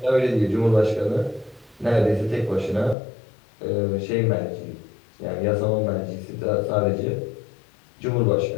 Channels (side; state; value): right; drops out; at 3.0 s